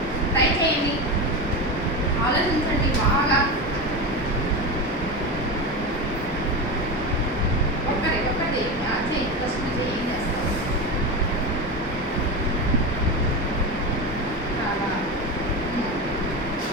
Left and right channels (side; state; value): both; normal; correlation 0.20